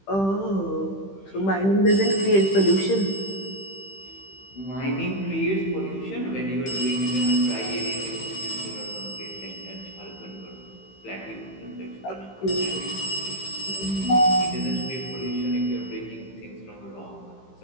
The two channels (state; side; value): late; right; 15 ms